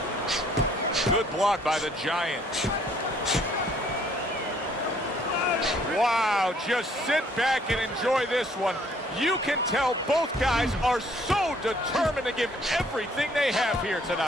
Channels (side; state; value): both; normal; correlation 0.62